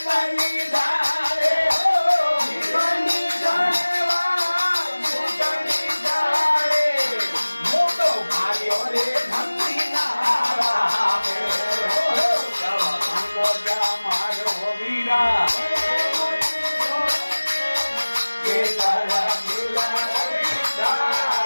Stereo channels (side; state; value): both; inverted; correlation -1.00